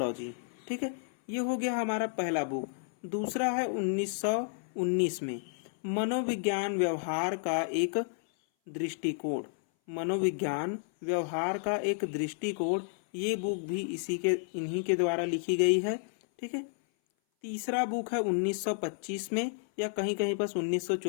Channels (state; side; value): silent; right; 57 dB below the other